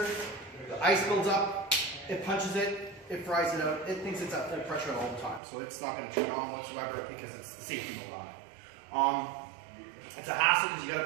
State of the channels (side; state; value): left; drops out; at 5.4 s